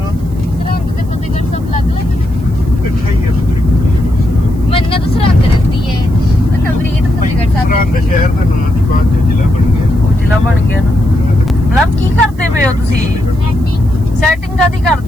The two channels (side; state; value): right; noise; hiss, 28 dB below the sound